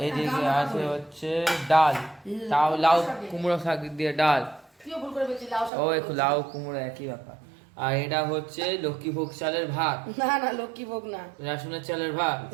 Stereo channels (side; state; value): left; drops out; at 5.7 s